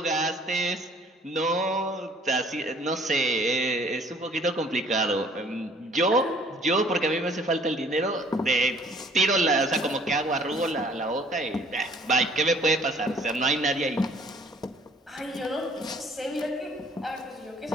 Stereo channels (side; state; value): both; normal; correlation 0.57